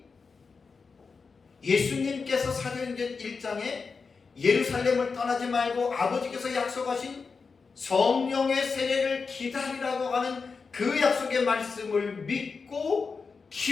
예수님께서 사도행전 1장에 예루살렘을 떠나지 말고 아버지께서 약속하신 성령의 세례를 기다리라고 하는 그 약속의 말씀을 믿고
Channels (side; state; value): right; quieter; 4.9 dB